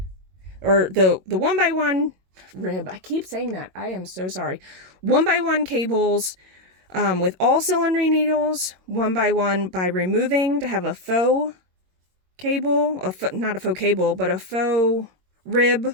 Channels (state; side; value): late; left; 22 ms